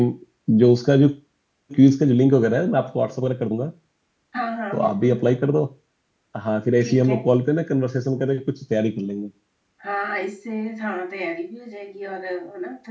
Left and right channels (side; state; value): both; identical; correlation 1.00